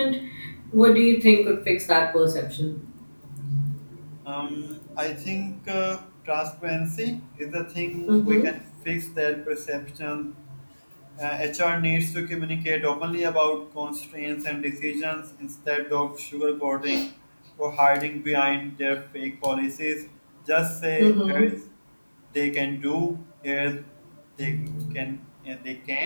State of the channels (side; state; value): both; inverted; correlation -1.00